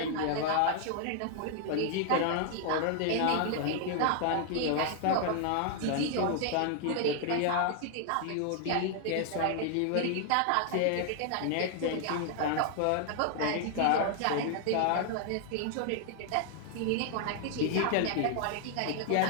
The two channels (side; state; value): both; different; correlation 0.00